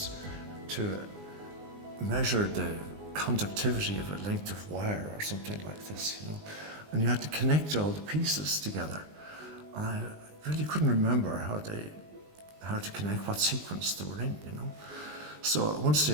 to measure the conductivity of a length of wire or something like this, you know. And you had to connect all the pieces together. And I really couldn't remember how to connect, what sequence they were in, you know. So at one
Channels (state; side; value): late; left; 19 ms